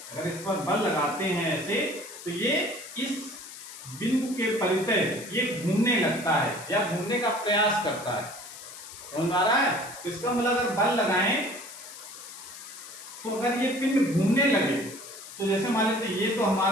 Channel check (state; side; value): noise; left; hiss, 14 dB below the sound